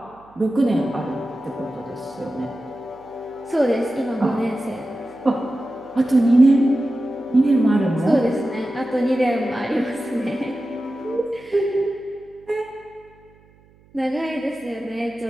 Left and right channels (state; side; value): noise; right; hum, 29 dB below the sound